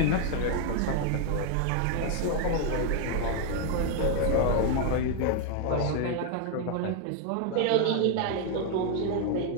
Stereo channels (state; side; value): different; both; correlation 0.00